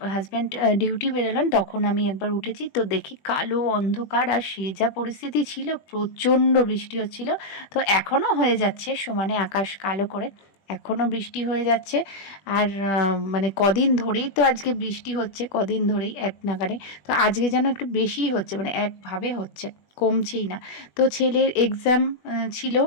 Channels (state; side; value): late; right; 20 ms